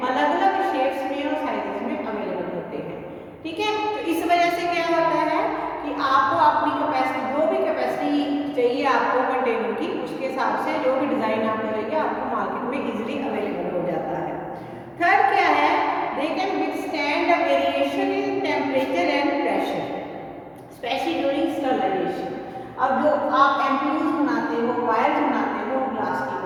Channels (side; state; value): both; identical; correlation 1.00